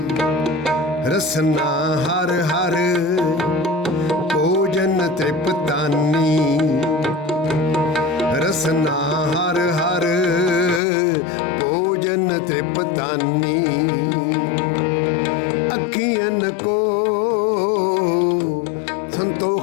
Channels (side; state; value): right; drops out; at 10.8 s